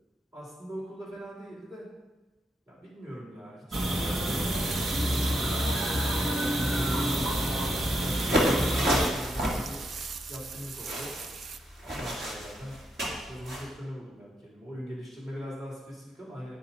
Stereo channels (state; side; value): normal; both; correlation 0.80